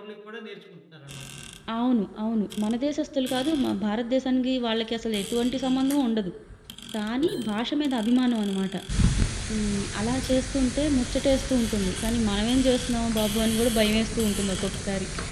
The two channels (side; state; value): both; identical; correlation 1.00